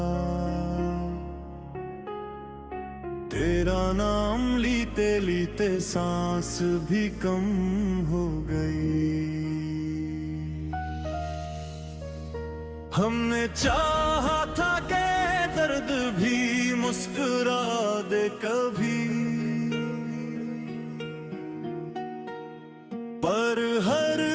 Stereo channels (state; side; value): identical; both; correlation 1.00